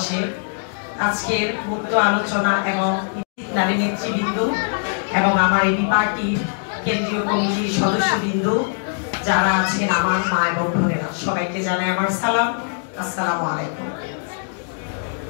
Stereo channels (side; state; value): right; silent; digital silence